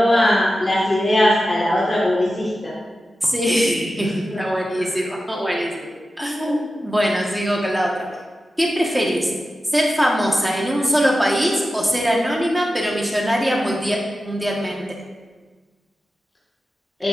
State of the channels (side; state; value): both; normal; correlation 0.93